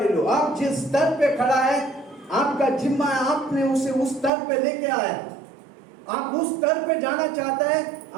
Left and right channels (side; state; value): left; drops out; at 4.3 s